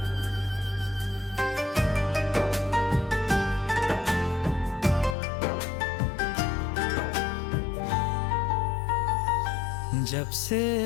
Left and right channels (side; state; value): right; drops out; at 5.2 s